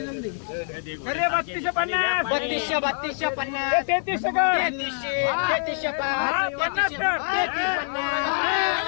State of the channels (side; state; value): right; silent; digital silence